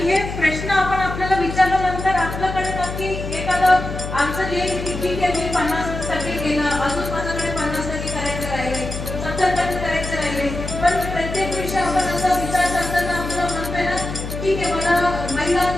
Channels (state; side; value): noise; left; hum, 7 dB below the sound